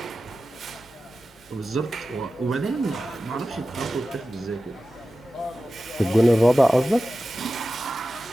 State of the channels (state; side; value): normal; both; correlation 0.94